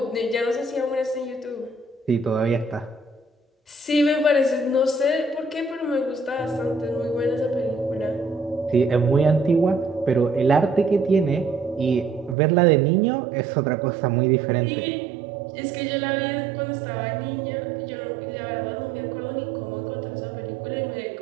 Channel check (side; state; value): left; drops out; at 12.4 s